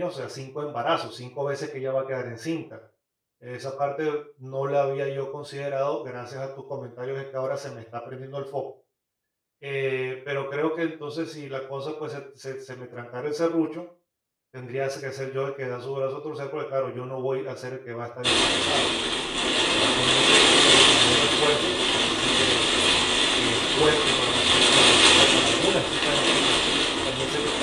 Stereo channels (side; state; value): both; identical; correlation 1.00